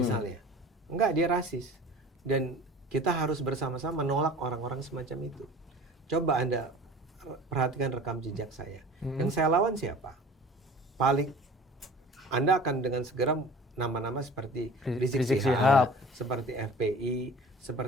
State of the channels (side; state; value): both; normal; correlation 0.42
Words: Enggak, dia rasis. Dan kita harus bersama-sama menolak orang-orang semacam itu. Coba Anda perhatikan rekam jejak saya. Yang saya lawan siapa? Paling Anda akan dengan segera nama-nama seperti Rizik Syihab, seperti FPI,